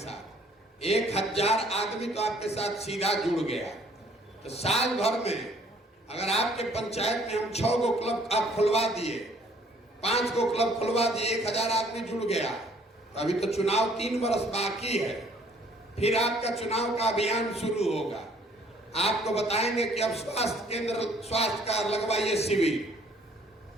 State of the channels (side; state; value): both; normal; correlation 0.60